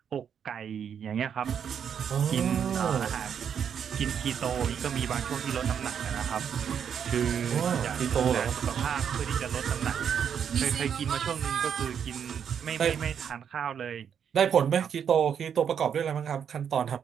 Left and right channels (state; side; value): quieter; left; 7.9 dB